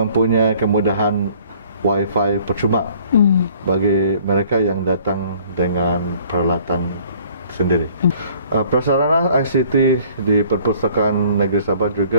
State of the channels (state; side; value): inverted; both; correlation -0.56